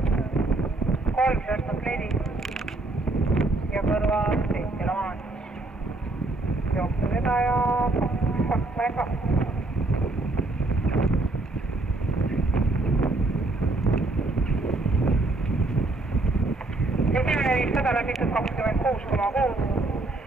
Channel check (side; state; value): left; quieter; 3.0 dB